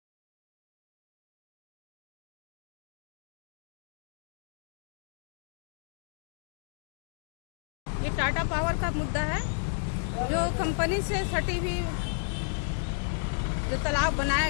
ये टाटा पावर का मुद्दा है, जो कंपनी से सटी हुई जो तालाब बनाया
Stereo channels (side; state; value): right; silent; digital silence